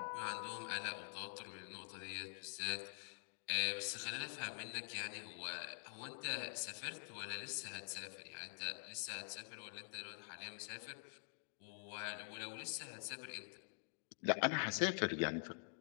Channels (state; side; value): silent; right; digital silence